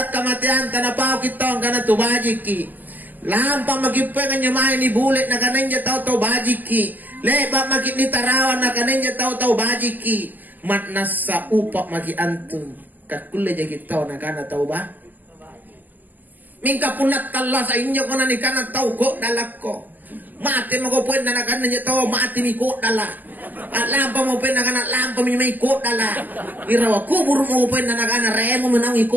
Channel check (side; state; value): left; late; 0.085 ms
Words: kamatian kana pau kitong kana tubajiki. Lampang magipengan nyamay ni bulet na kananya tau bajiki. Leba magit ni tarawan na kananya tau bajiki. Matnas sa upak magi antu. Kakulle jagi tau na kana tau ba. Mingka punat talla sa inyo ko na ni kana tau ko dalak ko. Mati mo ko pwede na nakanan niya to, mati mi ko dala. At lampa mo pwede na kanan, lampa mi may ko dala. Irawa, kubur mo pwede na nakanan, remo mo nang